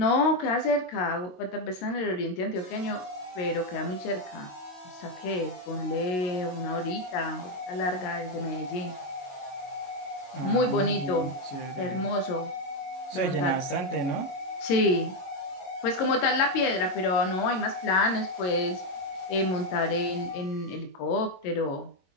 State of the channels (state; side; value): late; right; 22 ms